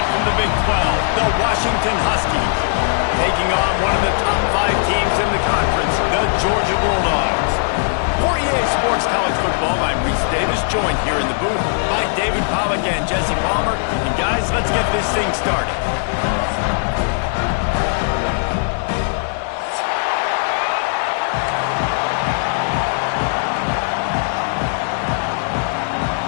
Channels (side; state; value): right; silent; digital silence